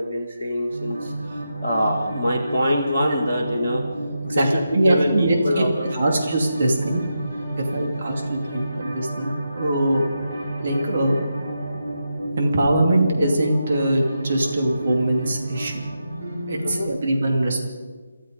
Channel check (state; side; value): inverted; both; correlation -0.86